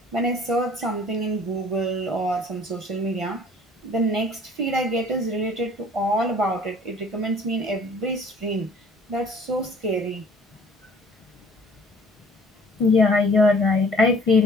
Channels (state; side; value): normal; both; correlation 0.53